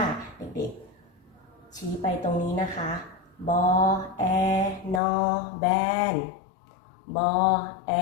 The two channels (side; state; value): right; drops out; at 5.0 s